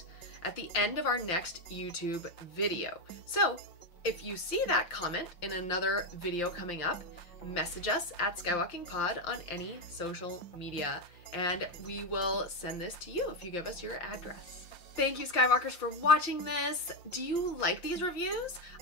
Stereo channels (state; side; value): late; right; 5.8 ms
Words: at the end of our next YouTube video. So if you see that comment in another video coming up, message us at SkywalkingPod on any social media, and we will send this to you if you give us your address. Thank you, Skywalkers, for watching this. Do you like these reviews?